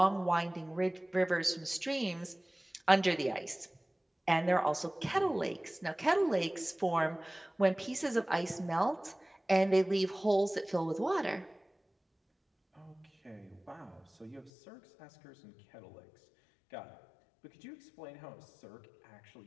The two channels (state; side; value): drops out; right; at 14.5 s